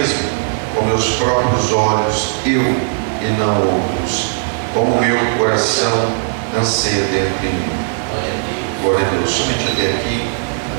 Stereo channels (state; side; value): silent; left; digital silence